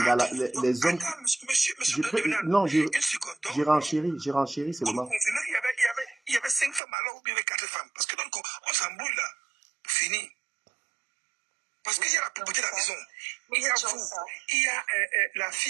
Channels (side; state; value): left; drops out; at 6.8 s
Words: les hommes. Attends, monsieur Devenal, Non, une seconde. j'ai renchéri seulement. Il y avait 5 femmes alors ou bien il y avait 4 femmes. Parce que donc, on s'embrouille là. Pour finir. Parce qu'il y a la propriété de la maison. Il y a vous. Il y a la